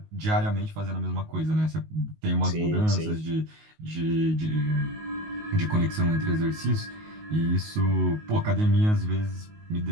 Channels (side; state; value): left; late; 19 ms